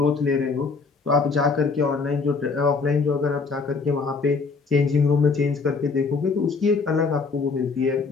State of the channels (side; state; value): right; quieter; 4.5 dB